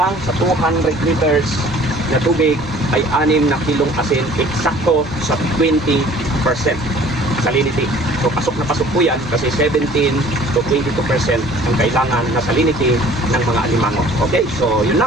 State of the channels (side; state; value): both; normal; correlation 0.51